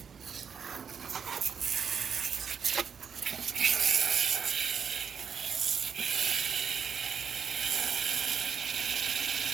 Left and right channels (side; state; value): left; quieter; 6.9 dB